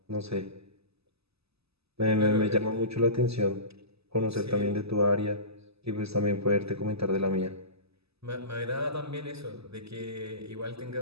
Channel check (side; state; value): left; late; 0.79 ms